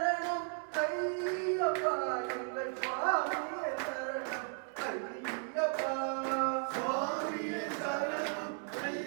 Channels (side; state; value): left; silent; 54 dB below the other